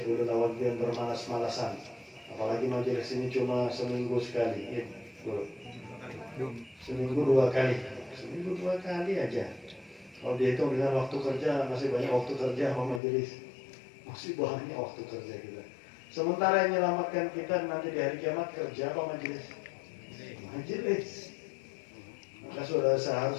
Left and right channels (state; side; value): drops out; right; at 13.0 s